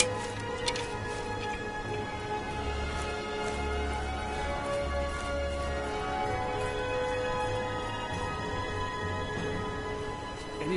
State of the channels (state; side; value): identical; both; correlation 1.00